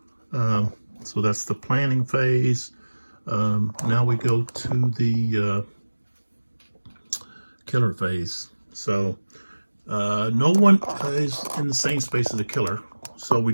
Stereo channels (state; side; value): inverted; both; correlation -1.00